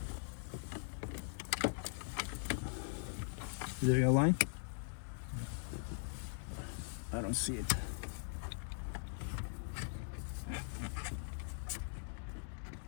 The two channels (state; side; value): silent; right; digital silence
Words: Is it aligned? I don't see it.